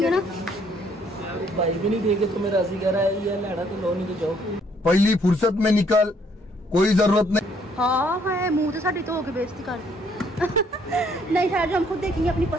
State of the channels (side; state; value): both; normal; correlation 0.66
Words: है ना। भाई भी नहीं देखे तो मेरा राजी कह रहा है, ये लड़ा तो लो नहीं तो जाओ। पहली फुर्सत में निकल, कोई जरूरत नहीं। हाँ है, मुंह तो साड़ी तो होके बेइज्जती कर दी। नहीं खैर, जो हम खुद देखेंगे, अपनी